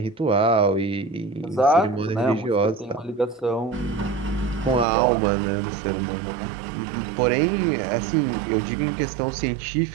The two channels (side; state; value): left; drops out; at 4.9 s